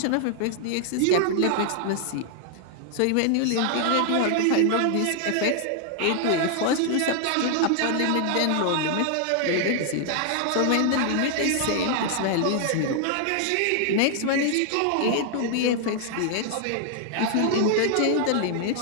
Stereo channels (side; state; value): both; different; correlation 0.00